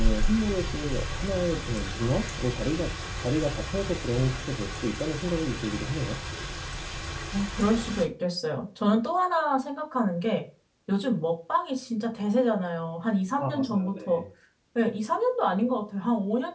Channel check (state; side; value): identical; both; correlation 1.00